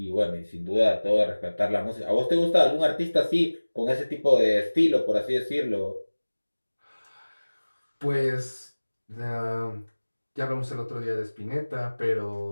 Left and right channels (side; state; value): both; inverted; correlation -1.00